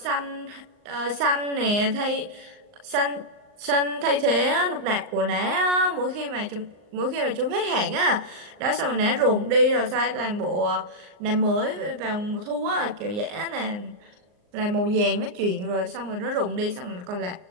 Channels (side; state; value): left; late; 39 ms